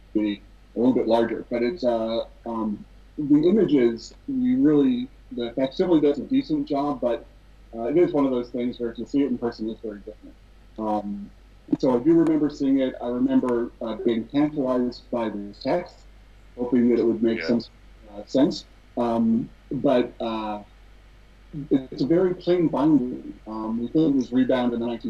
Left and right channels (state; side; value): identical; both; correlation 1.00